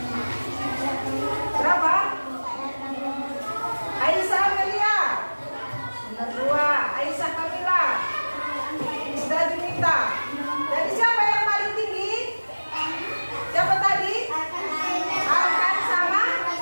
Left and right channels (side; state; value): both; inverted; correlation -1.00